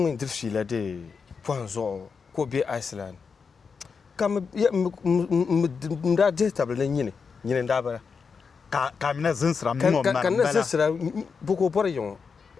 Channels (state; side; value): quieter; right; 5.5 dB